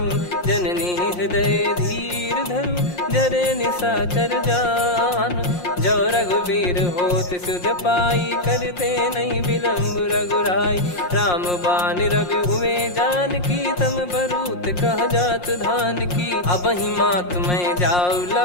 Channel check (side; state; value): right; late; 5.6 ms